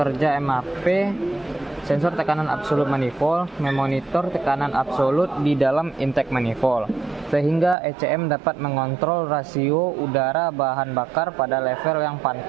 MAP, sensor tekanan absolut manifold memonitor tekanan absolut di dalam intake manifold, sehingga ECM dapat mengontrol rasio udara bahan bakar pada level yang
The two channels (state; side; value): drops out; left; at 7.8 s